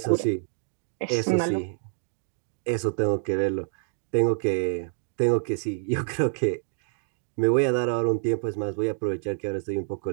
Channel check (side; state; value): left; silent; digital silence